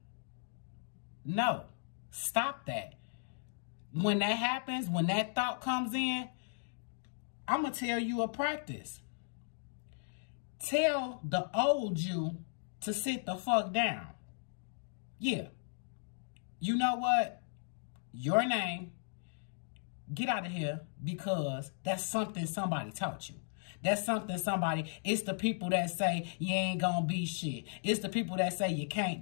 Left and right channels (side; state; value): right; silent; digital silence